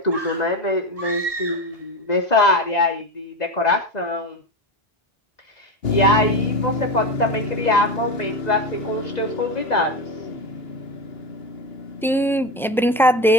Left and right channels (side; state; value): both; normal; correlation 0.20